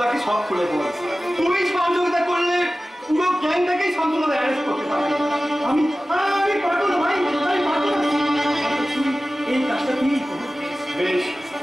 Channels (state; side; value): normal; both; correlation 0.96